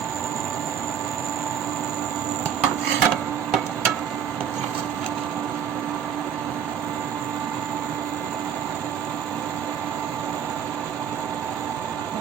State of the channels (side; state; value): left; quieter; 8.5 dB